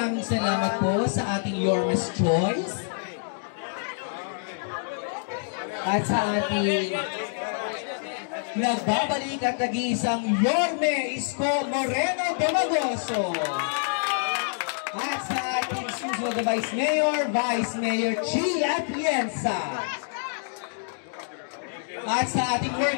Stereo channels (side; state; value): right; silent; digital silence